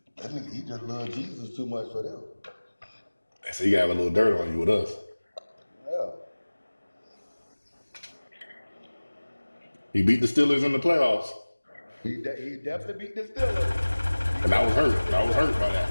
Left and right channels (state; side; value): inverted; both; correlation -1.00